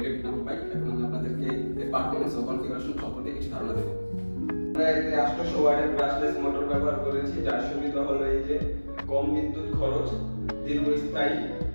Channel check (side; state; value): both; inverted; correlation -1.00